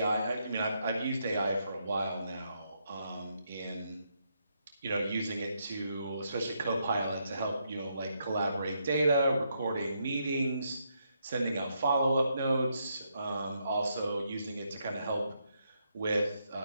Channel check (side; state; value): both; inverted; correlation -0.78